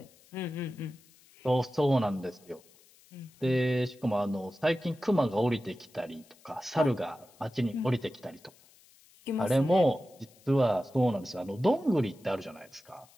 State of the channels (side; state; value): left; noise; hiss, 28 dB below the sound